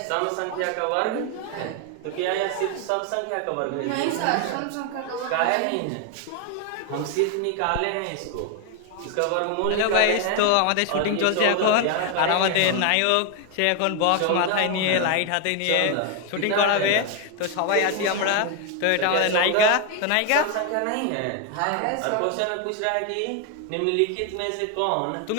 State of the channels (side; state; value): both; different; correlation 0.01